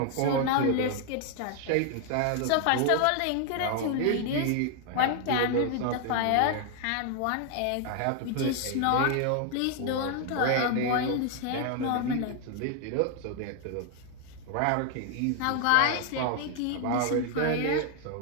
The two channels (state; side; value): different; both; correlation 0.00